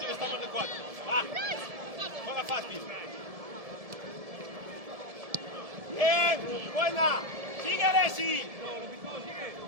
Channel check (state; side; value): late; left; 1.7 ms